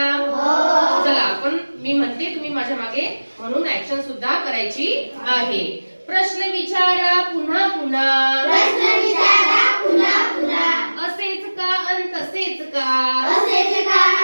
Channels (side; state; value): both; inverted; correlation -1.00